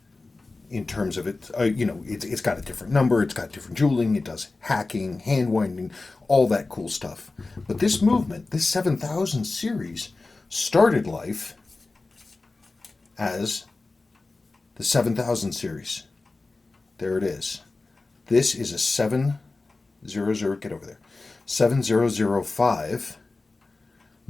in terms of it. It's got a different number, it's got different jeweling, it does hacking, hand winding, all that cool stuff. But this movement, this 7000 series, started life as the 7000 series. There it is. This is a 700, get over there, 7005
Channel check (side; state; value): right; quieter; 3.5 dB